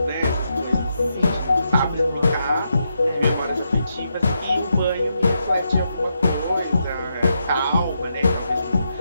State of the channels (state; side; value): inverted; both; correlation -0.83